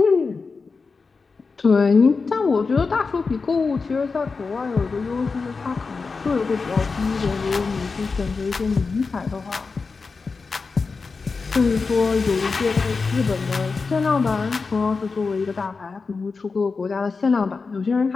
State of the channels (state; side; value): quieter; right; 4.5 dB